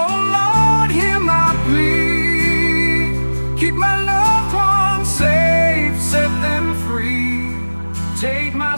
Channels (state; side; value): inverted; both; correlation -1.00